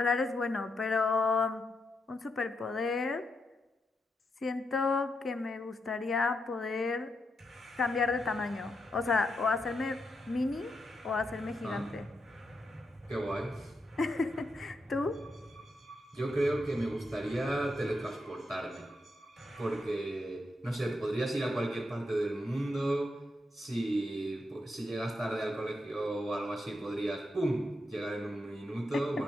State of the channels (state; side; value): normal; both; correlation 0.83